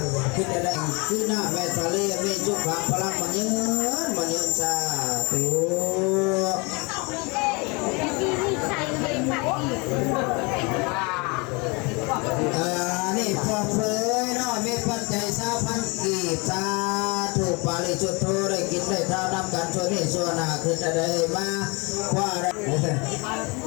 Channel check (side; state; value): right; quieter; 29.0 dB